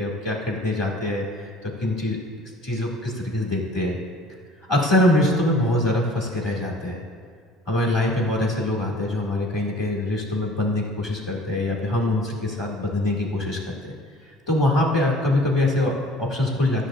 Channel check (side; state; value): both; normal; correlation 0.50